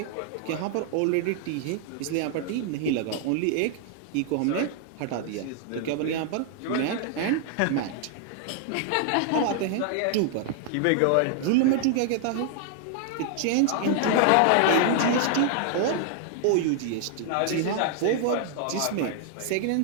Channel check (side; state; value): both; different; correlation 0.00